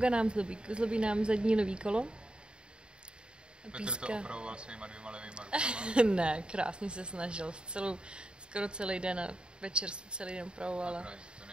nám zlobí nám zadní levý kolo. Petr to opravoval svýma 2 levýma rukama. Ne, krásně se snažil. Skoro celý den a večer se celý den opravovala. To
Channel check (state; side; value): late; left; 0.051 ms